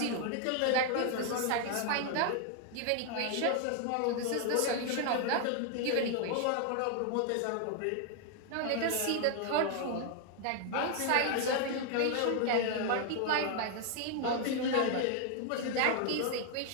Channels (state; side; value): different; both; correlation 0.00